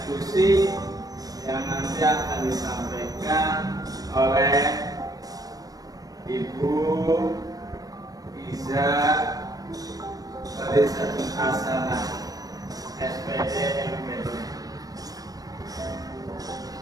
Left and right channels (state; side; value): late; left; 0.18 ms